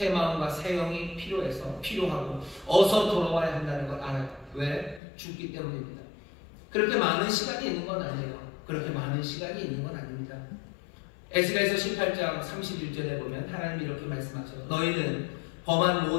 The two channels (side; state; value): right; drops out; at 5.0 s